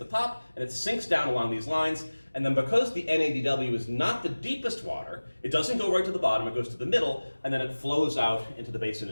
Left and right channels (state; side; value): inverted; both; correlation -1.00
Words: top, and it sinks down along these lines. And then because the NADW is not the deepest water, it doesn't go right to the bottom, it goes to the middle, and then it flows out into the basin